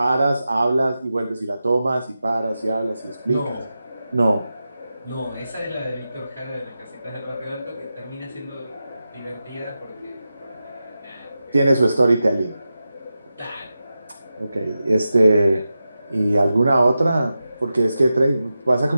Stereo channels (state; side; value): inverted; both; correlation -0.91